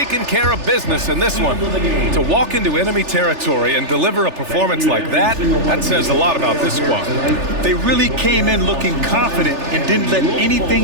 care of business in this one. To walk into enemy territory and deliver a performance like that, that says a lot about this squad. They really came in looking confident and didn't let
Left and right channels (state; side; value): late; left; 3.4 ms